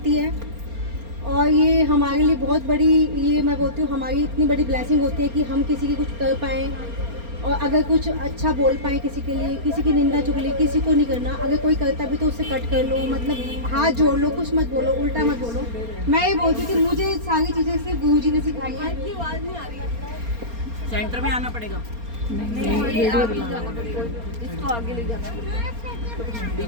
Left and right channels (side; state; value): left; late; 4.3 ms